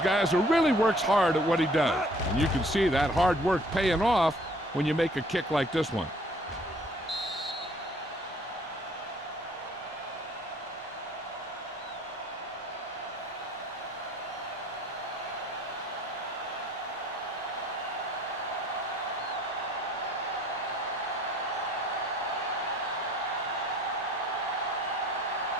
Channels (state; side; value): normal; both; correlation 0.57